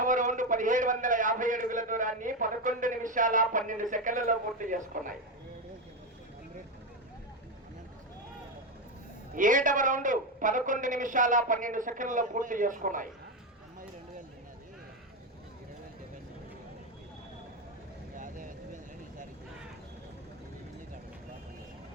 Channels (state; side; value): normal; both; correlation 0.11